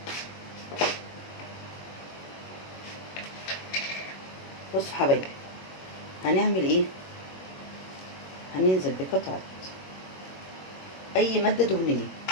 بصوا حبايبي، هنعمل ايه؟ هننزل بقطعة اي مادة دهنية.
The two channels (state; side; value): late; right; 21 ms